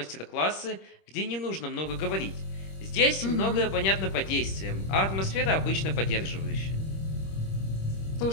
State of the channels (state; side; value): late; right; 26 ms